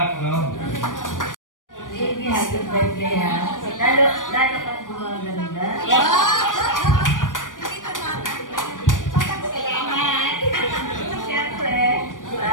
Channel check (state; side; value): late; right; 0.88 ms